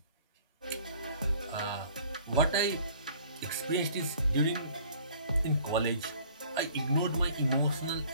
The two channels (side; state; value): both; inverted; correlation -0.53